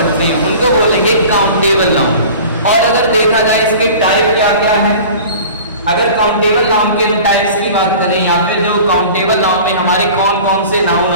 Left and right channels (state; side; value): inverted; both; correlation -0.41